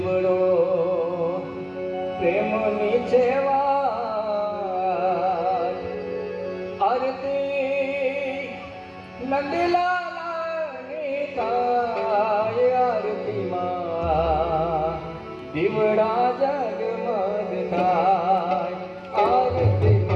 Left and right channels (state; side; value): identical; both; correlation 1.00